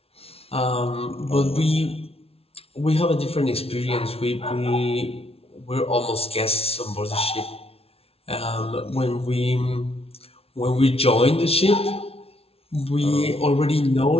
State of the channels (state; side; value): late; right; 0.29 ms